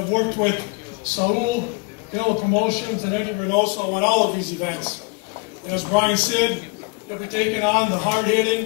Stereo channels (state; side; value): quieter; right; 29.2 dB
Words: worked with SAUL, Canelo Promotions, and Edgar Berlanga on all of these events. And as Brian said, he'll be taking on the